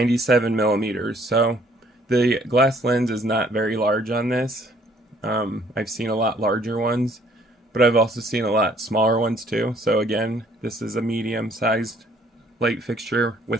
millimeters. So the glass lens is not very large on this. I've seen a lot larger ones, but I've also seen a lot smaller ones too. So again, this is a medium-sized light fixture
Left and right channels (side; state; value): both; normal; correlation 0.61